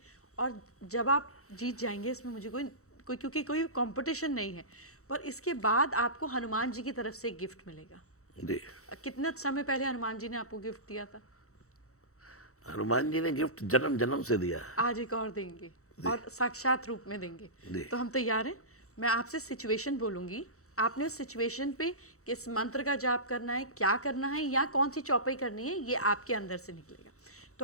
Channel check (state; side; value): late; right; 0.64 ms